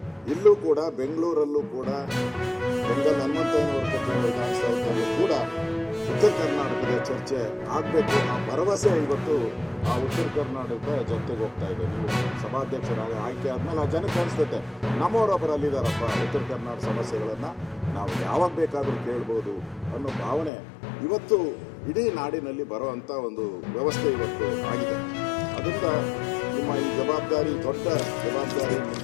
ಕೂಡ ಬೆಂಗಳೂರಲ್ಲೂ ಕೂಡ ಬೆಂಗಲ್ ಹನುಮಂತಯ್ಯನವರ ವಿಧಾನಸೌಧದಲ್ಲೂ ಕೂಡ ಉತ್ತರ ಕರ್ನಾಟಕದ ಚರ್ಚೆ ಆಗಬೇಕು. ಆ ಭರವಸೆ ಇವತ್ತು ಆ ಉತ್ತರ ಕರ್ನಾಟಕದ ಜನತೆಗೆ ಹೋಗ್ತಾ ಇದೆ. ನೀವು ಸಭಾಧ್ಯಕ್ಷರಾಗಿ ಆಯ್ಕೆ ಆದ್ಮೇಲೆ ಆ ಜನಕ್ಕೆ ಅನಿಸ್ತೈತೆ, ನಮ್ಮವರೊಬ್ಬರು ಅಲ್ಲಿದ್ದಾರಪ್ಪ, ಉತ್ತರ ಕರ್ನಾಟಕ ಸಮಸ್ಯೆಗಳನ್ನು ನಾವು ಯಾವಾಗ ಬೇಕಾದರೂ ಕೇಳ್ಬೋದು ಅನ್ನೋ ಭಾವನೆ ಇವತ್ತು ಇಡೀ ನಾಡಿನಲ್ಲಿ ಬರುವಂಥ ಒಂದು ವ್ಯವಸ್ಥೆ ಇವತ್ತು ಆಗಿದೆ. ಅದರಿಂದ ನಿಮ್ಮ ಈ ಜವಾಬ್ದಾರಿ, ದೊಡ್ಡ ಜವಾಬ್ದಾರಿ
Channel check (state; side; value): drops out; right; at 20.5 s